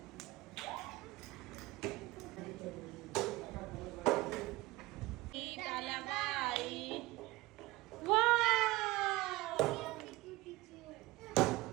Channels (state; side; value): quieter; left; 19.9 dB